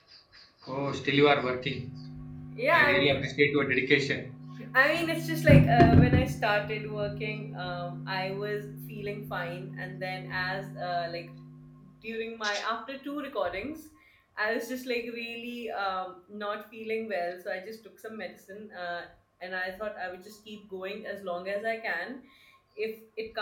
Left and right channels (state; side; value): identical; both; correlation 1.00